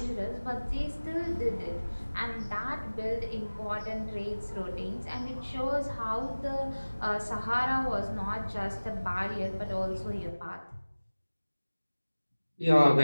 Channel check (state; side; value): inverted; both; correlation -1.00